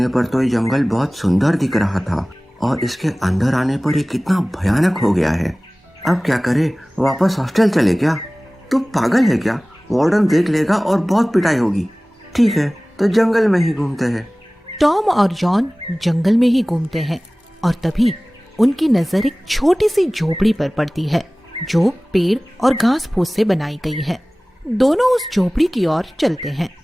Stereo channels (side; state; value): both; normal; correlation 0.98